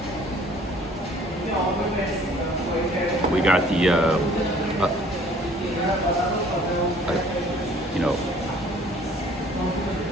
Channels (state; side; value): normal; both; correlation 0.55